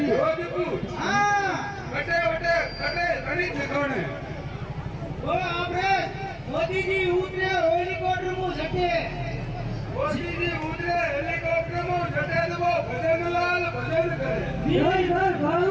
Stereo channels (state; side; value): identical; both; correlation 1.00